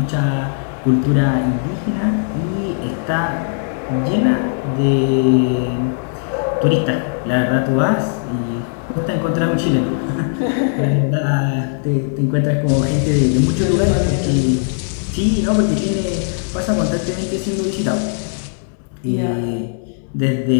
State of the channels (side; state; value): right; silent; digital silence